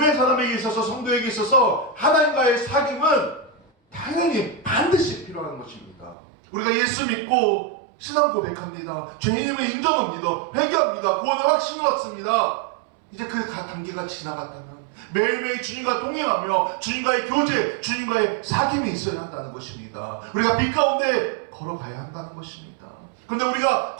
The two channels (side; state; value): left; drops out; at 6.2 s